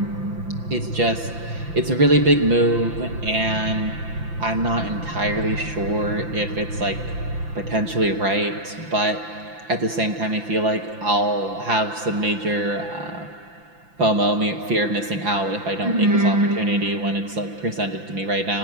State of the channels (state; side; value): late; left; 5.9 ms